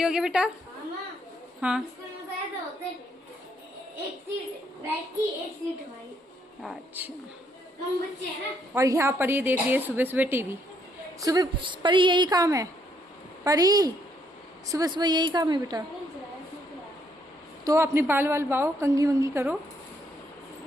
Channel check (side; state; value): both; normal; correlation 0.72